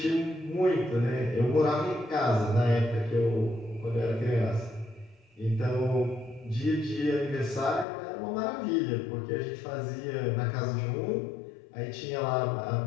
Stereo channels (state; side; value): drops out; right; at 7.9 s